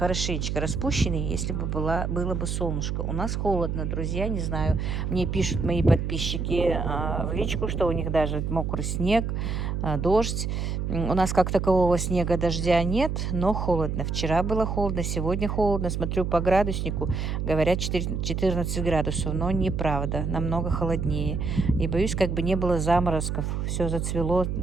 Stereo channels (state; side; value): noise; right; hum, 2 dB below the sound